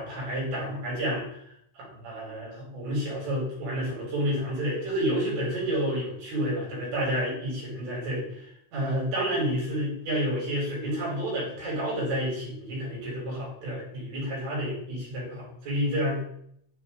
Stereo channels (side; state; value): left; late; 16 ms